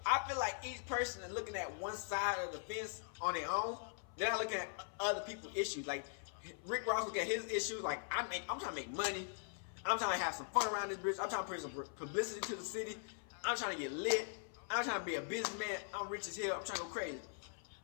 I feel like each person is looking at one side of the fence on their own. They're not looking at other people's issues. Like Rick Ross look at his issues. Like I'm trying to make money. I'm trying to have some fun around this bitch. I'm trying to bring some publicity to the city. I'm trying to get lit. I'm trying to be a businessman. I'm rich as hell. I'm trying to go crazy.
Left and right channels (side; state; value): right; silent; 50 dB below the other